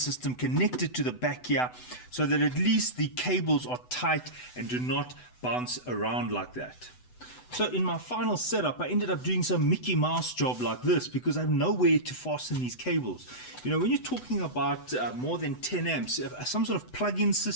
connected to the back here, so that at least the cables are tight and do not bounce around like that. So in my final setup, I ended up doing some Mickey Mouse job like this, because I have nowhere to fasten these cables. When you're talking about more than 10 amps, some sort of plug-in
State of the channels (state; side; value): late; right; 8.0 ms